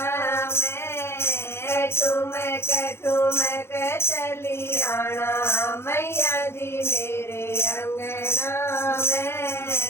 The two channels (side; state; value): right; late; 0.12 ms